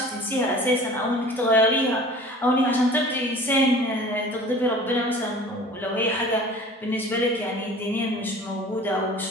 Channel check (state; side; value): normal; both; correlation 0.44